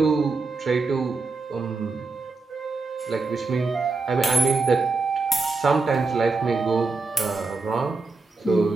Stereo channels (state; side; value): quieter; left; 3.9 dB